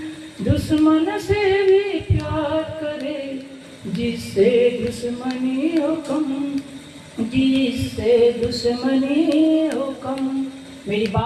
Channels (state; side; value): identical; both; correlation 1.00